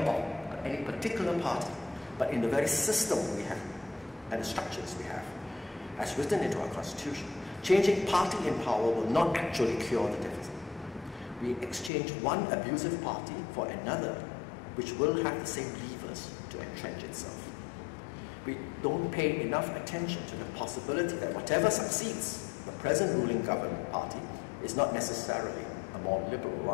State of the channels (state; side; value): drops out; right; at 11.9 s